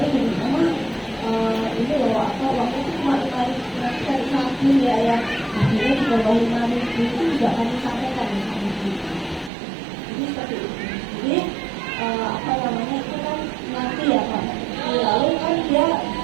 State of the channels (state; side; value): drops out; left; at 9.5 s